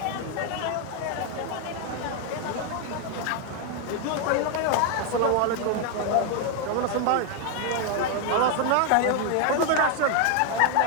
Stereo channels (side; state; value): both; different; correlation 0.01